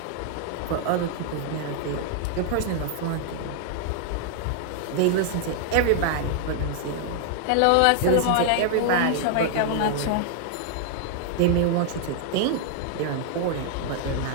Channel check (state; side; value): different; both; correlation 0.00